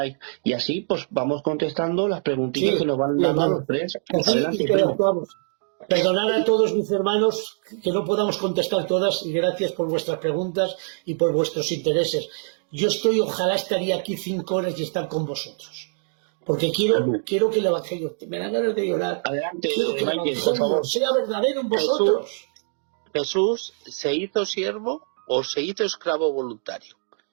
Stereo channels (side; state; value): left; silent; digital silence